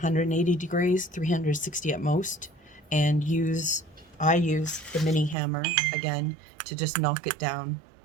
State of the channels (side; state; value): left; drops out; at 5.4 s